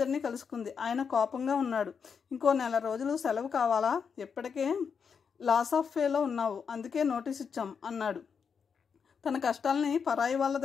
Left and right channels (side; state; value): right; quieter; 6.3 dB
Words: కలుసుకుంది. ఆయన కోపంగా ఉన్నాడు. ఇంకో 4 రోజులు సెలవు కావాలా? ఇప్పటికే లాస్ ఆఫ్ పేలో ఉన్నావు, అందుకే నోటీస్ ఇచ్చాం అన్నాడు. తన కష్టాలని పరాయి వాళ్ళ